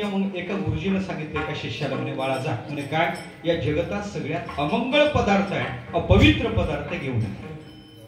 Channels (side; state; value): both; identical; correlation 1.00